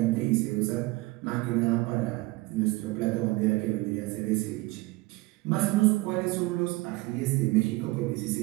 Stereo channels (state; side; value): quieter; left; 21.5 dB